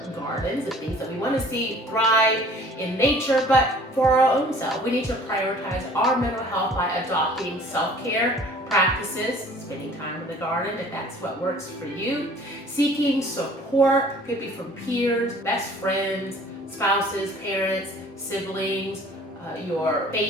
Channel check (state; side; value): normal; both; correlation 0.51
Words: gardens, the things that we want to see thrive in nature, but for our own self. We need to prioritize our mental health by adopting self-care practices, spending time in the garden if that's what works for you, seeking support, could be from peers, best friends, spouses, parents, siblings, your